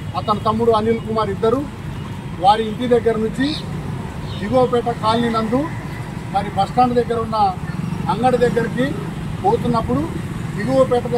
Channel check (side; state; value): both; identical; correlation 1.00